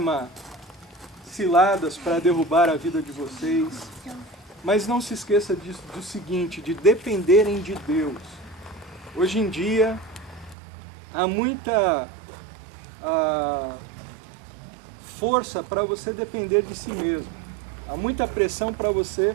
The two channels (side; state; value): left; drops out; at 10.6 s